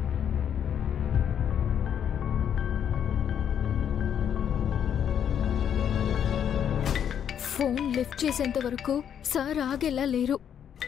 ఫోన్ లిఫ్ట్ చేసేంత వరకు సార్ ఆగేలా లేరు.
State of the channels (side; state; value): right; quieter; 8.8 dB